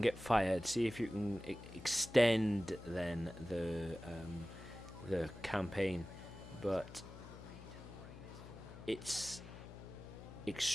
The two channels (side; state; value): left; noise; hum, 14 dB below the sound